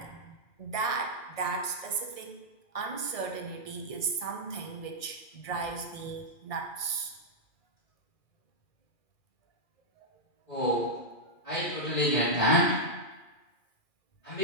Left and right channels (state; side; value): late; right; 1.6 ms